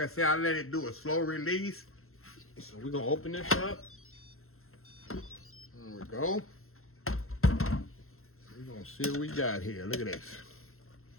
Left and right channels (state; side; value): late; right; 0.62 ms